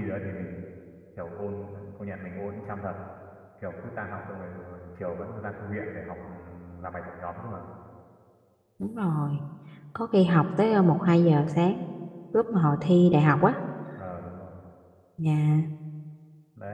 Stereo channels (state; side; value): identical; both; correlation 1.00